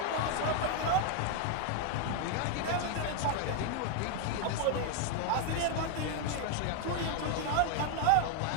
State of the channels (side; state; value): both; different; correlation 0.01